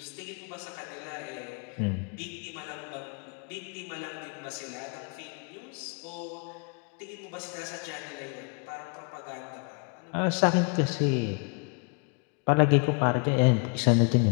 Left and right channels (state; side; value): quieter; right; 36.0 dB